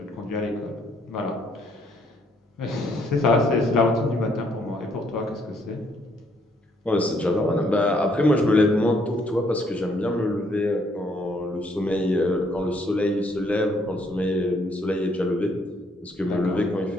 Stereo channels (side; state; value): both; normal; correlation 0.69